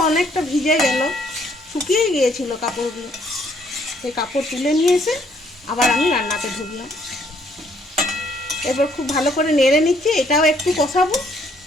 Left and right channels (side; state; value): both; normal; correlation 0.66